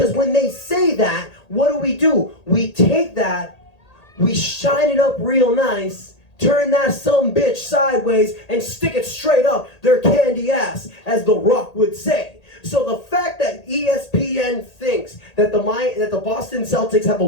when they say that, what do? We take that, we shine it up real nice, turn that some bitch sideways, and stick it straight up their candy ass, as The Rock would say. So the fact that ESPN thinks that the Boston Celtics have a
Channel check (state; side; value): late; right; 1.8 ms